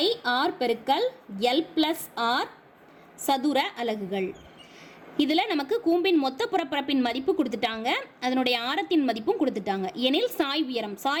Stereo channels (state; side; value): identical; both; correlation 1.00